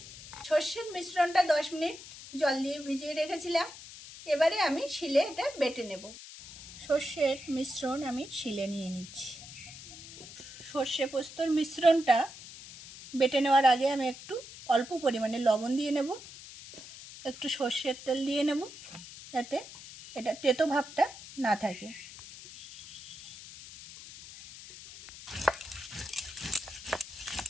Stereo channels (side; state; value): left; noise; hiss, 15 dB below the sound